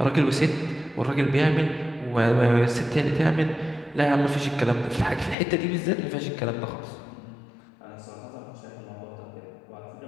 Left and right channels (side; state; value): right; drops out; at 5.4 s